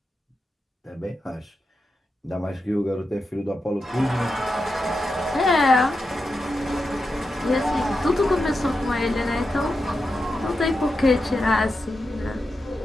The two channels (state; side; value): normal; both; correlation 0.88